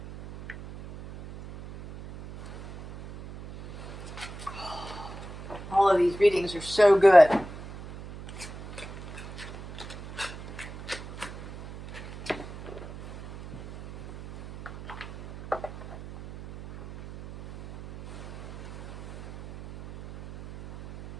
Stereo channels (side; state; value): right; noise; hum, 14 dB below the sound